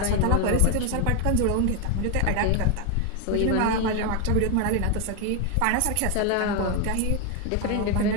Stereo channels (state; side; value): different; both; correlation 0.01